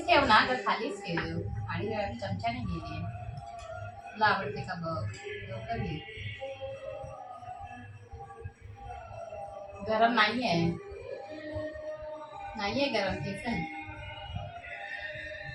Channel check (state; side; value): identical; both; correlation 1.00